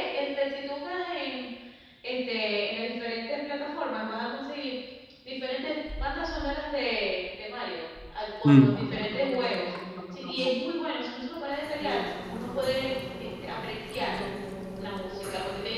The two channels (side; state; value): both; identical; correlation 1.00